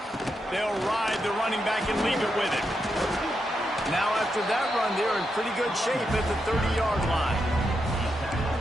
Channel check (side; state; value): both; normal; correlation 0.84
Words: They'll ride the running back and leave it with him. Now after that run, they're in pretty good shape at the 30-yard line.